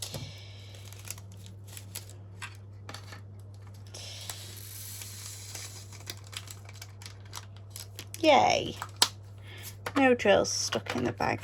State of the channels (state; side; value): identical; both; correlation 1.00